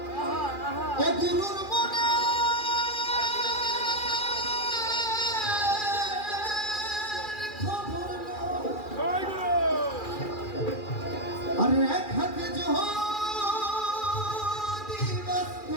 গুরুর মনে খবর আরে এক হাতে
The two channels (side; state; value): right; late; 2.4 ms